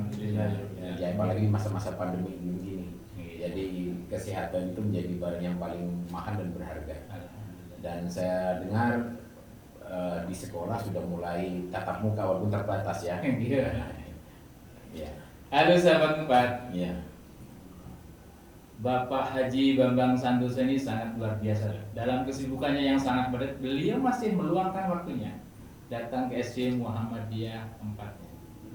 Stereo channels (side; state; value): both; identical; correlation 1.00